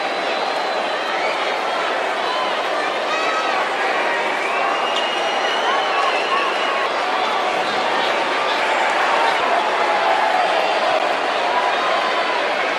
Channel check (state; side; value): identical; both; correlation 1.00